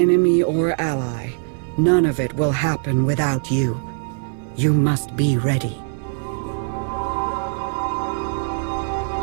or ally, none of it will happen without you. You must be ready.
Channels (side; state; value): left; silent; digital silence